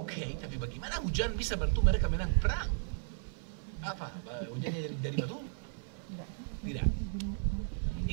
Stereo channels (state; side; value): silent; left; 54 dB below the other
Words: tapi bagaimana hujan bisa bantu mereka menang perang? Apa? Hujannya dari batu? Tidak.